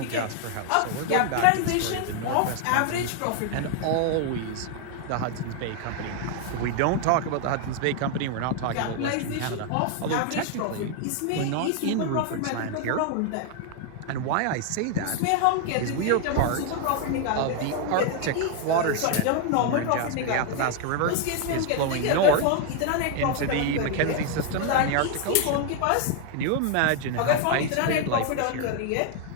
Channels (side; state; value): both; different; correlation 0.00